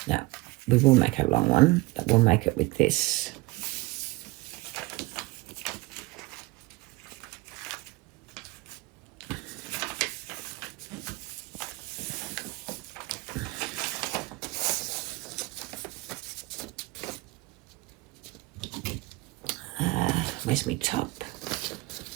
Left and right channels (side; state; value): left; quieter; 21.6 dB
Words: No, we will make a long one, but we'll make it with this. Where's my top?